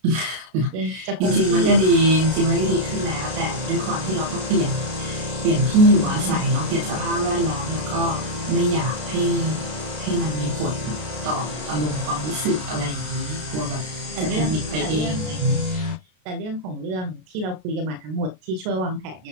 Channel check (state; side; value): late; left; 33 ms